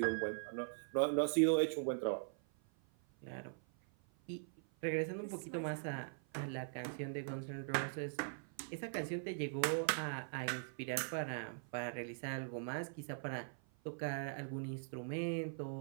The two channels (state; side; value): silent; left; 50 dB below the other